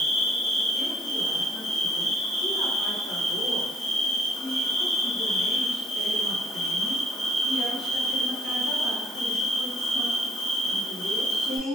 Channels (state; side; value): normal; both; correlation 0.63